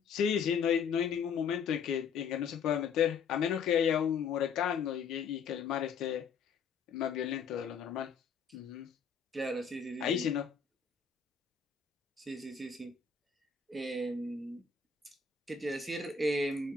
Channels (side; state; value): right; quieter; 6.1 dB